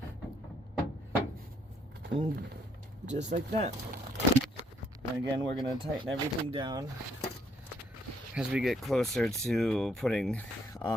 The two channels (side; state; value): both; normal; correlation 0.69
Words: And just like that. And again, we're going to tighten everything down as we get closer to putting